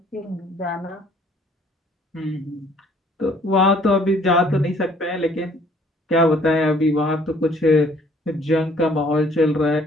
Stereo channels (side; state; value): both; normal; correlation 0.59